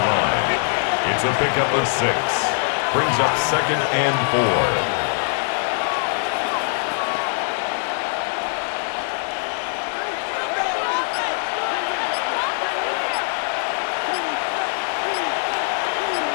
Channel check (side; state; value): right; silent; 63 dB below the other